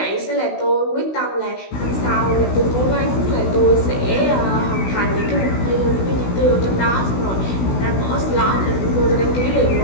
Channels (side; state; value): right; late; 16 ms